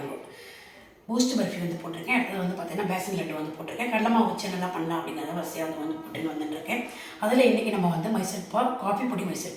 பூஸ்ட் பர்ஃபி வந்து போட்டிருக்கேன். அடுத்தது வந்து பார்த்திங்கன்னா பேசன் லட்டு வந்து போட்டிருக்கேன். கடலை மாவு வச்சு என்னெல்லாம் பண்ணலாம் அப்படிங்கிறத வரிசையாக வந்து போட்டுன்னு வந்துட்டுருக்கேன். அதில் இன்றைக்கி நம்ம வந்து மைசூர் பாகு, காஃபி பொடி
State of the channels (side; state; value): both; identical; correlation 1.00